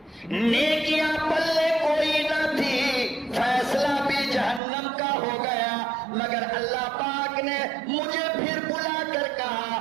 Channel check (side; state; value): left; drops out; at 4.6 s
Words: نیکیاں پلے کوئی نہ تھی، فیصلہ بھی جہنم کا ہو گیا. مگر اللہ پاک نے مجھے پھر بلا کر کہا